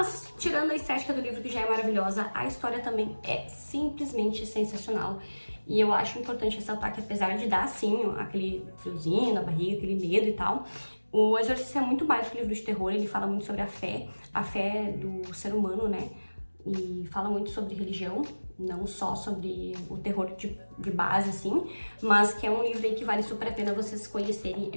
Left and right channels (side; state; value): both; inverted; correlation -1.00